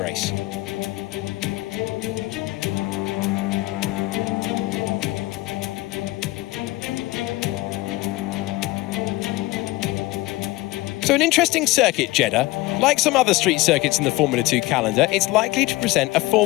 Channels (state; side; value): quieter; right; 20.0 dB